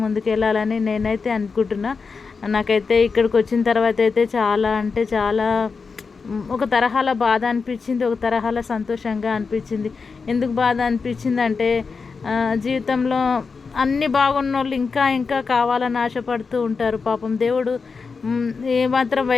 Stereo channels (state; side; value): quieter; right; 4.9 dB